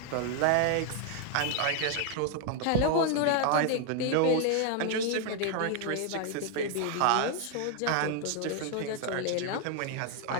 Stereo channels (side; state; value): both; different; correlation 0.00